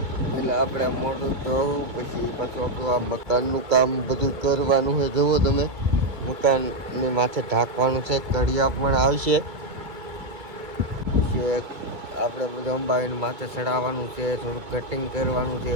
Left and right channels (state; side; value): late; left; 2.3 ms